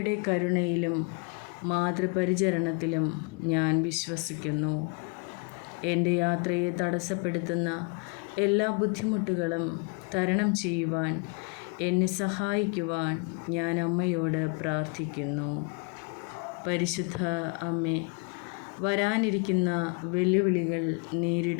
കരുണയിലും മാതൃപരിചരണത്തിലും ഞാൻ വിശ്വസിക്കുന്നു. എൻ്റെ യാത്രയെ തടസ്സപ്പെടുത്തുന്ന എല്ലാ ബുദ്ധിമുട്ടുകളും തരണം ചെയ്യുവാൻ എന്നെ സഹായിക്കുവാൻ ഞാൻ അമ്മയോട് പ്രാർത്ഥിക്കുന്നു. പരിശുദ്ധ അമ്മേ, വരാനിരിക്കുന്ന വെല്ലുവിളികൾ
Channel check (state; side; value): quieter; right; 32.4 dB